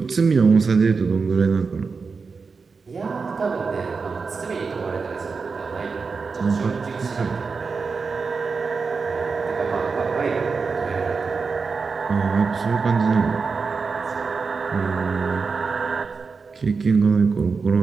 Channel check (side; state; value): left; quieter; 4.8 dB